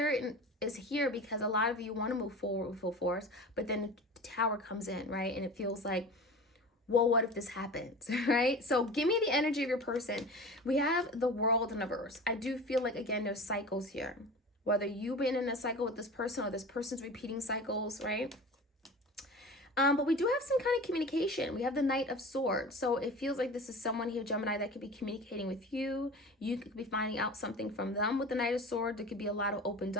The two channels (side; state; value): both; normal; correlation 0.35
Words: is here because a lot of you want to move forward with full force, but then the Tower comes in, right, and it feels like, well, what if this happens, right? So give me the energy of your person. We have the World in reverse. I do feel like, again, there's cycles here, whether you've been in a cycle with this person or this person's repeating cycles, right? But we do have some kind of communication. We have the Knight of Swords. So it feels like this is someone here, Gemini, that could be communicating with you. You could be finding out something from them with the Knight of Swords. There could be a lot of open